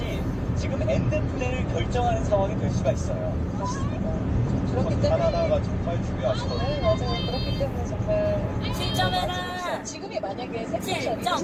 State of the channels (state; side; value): identical; both; correlation 1.00